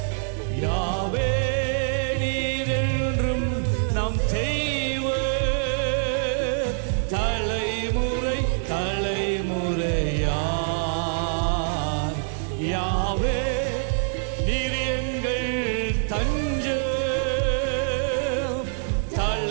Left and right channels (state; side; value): silent; left; digital silence